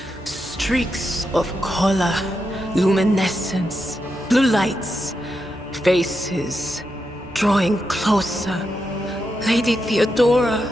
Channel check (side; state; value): both; normal; correlation 0.86